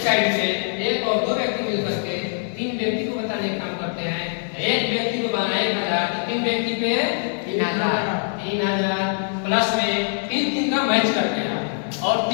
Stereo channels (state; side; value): silent; right; 60 dB below the other